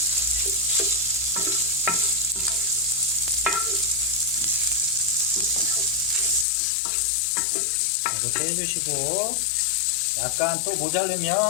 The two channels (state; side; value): drops out; right; at 6.5 s